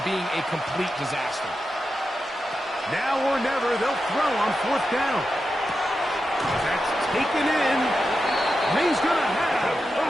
being a complete disaster. Now or never, they'll throw on fourth down. That's taken in. And he's going to have the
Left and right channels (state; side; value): normal; both; correlation 0.89